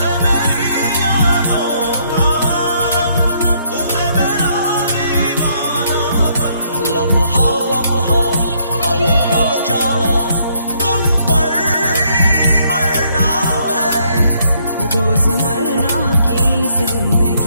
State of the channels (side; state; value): both; inverted; correlation -0.70